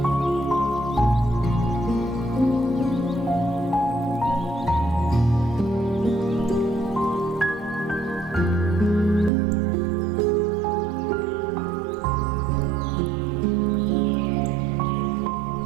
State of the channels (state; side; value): drops out; left; at 9.3 s